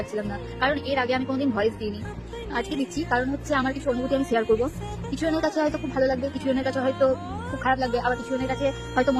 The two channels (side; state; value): both; identical; correlation 1.00